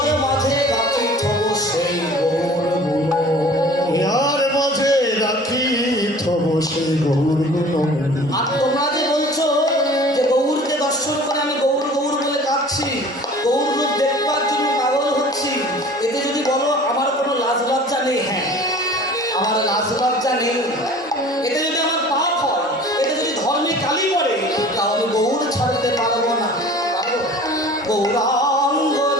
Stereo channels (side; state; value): both; normal; correlation 0.45